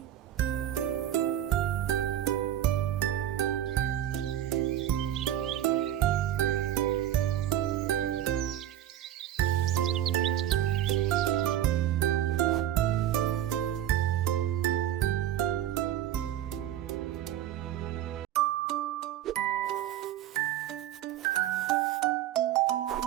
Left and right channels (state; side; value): quieter; left; 11.9 dB